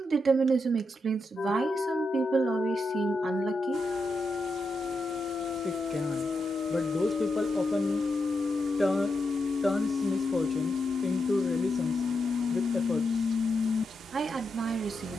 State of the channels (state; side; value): normal; both; correlation 0.85